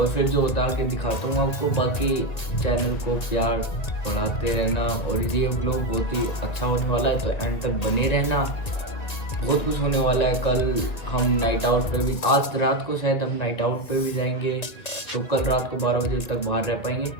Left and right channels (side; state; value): right; late; 1.9 ms